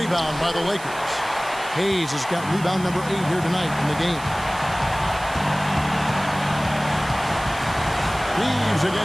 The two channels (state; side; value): noise; right; hiss, 17 dB below the sound